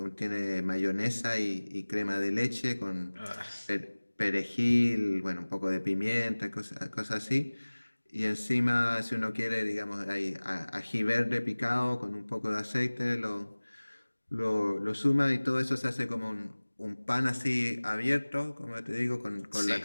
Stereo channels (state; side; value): inverted; both; correlation -1.00